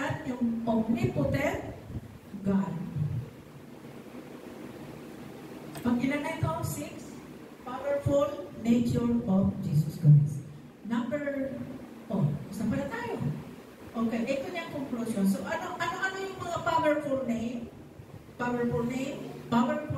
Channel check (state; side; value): identical; both; correlation 1.00